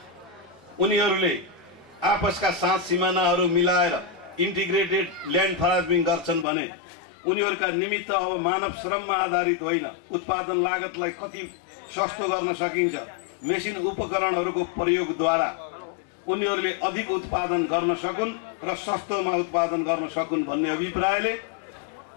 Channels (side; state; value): right; drops out; at 6.5 s